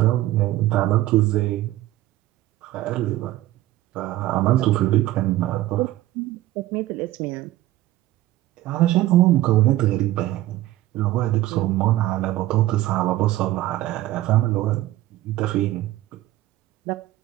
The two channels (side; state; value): left; quieter; 15.5 dB